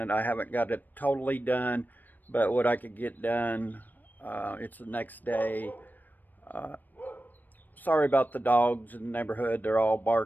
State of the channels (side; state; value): right; late; 0.088 ms